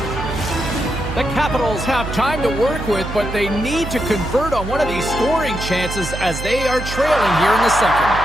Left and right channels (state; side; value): noise; right; hum, 7 dB below the sound